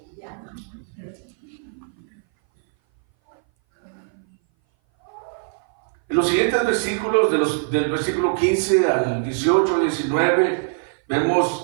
En los siguientes versículos, del versículo 15 al 18, 19,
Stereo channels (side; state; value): left; silent; 59 dB below the other